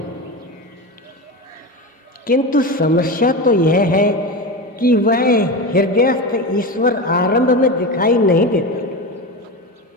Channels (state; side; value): normal; both; correlation 0.22